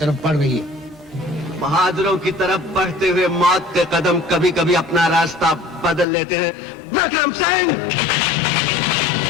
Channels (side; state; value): right; drops out; at 6.1 s